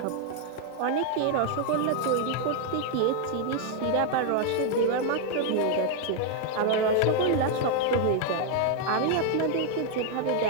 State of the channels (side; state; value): both; different; correlation 0.00